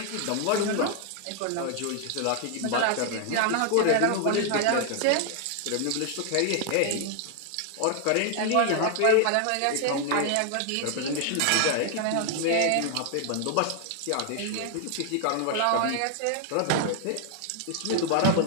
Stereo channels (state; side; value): different; both; correlation 0.00